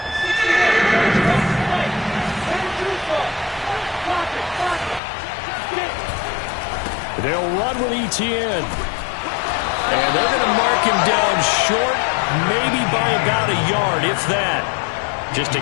They'll run with Etienne. And they're going to mark him down short, maybe by about a yard, if that. Just a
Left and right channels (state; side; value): drops out; right; at 5.0 s